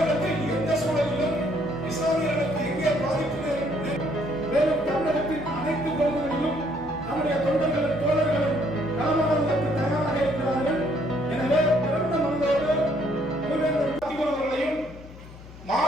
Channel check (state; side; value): noise; left; hum, 17 dB below the sound